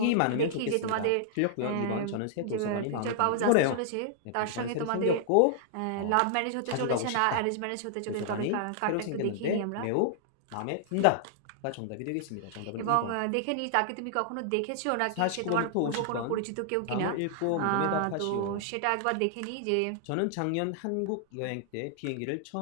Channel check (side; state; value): both; different; correlation -0.01